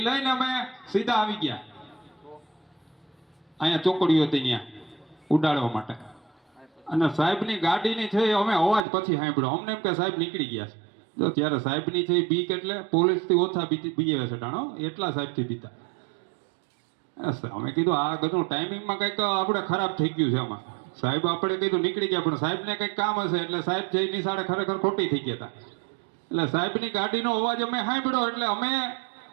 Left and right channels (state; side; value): drops out; left; at 8.8 s